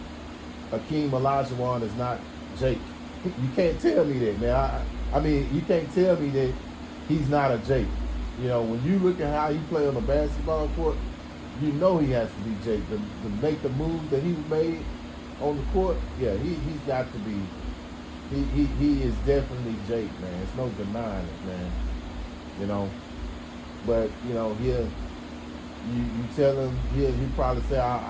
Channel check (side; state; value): both; identical; correlation 1.00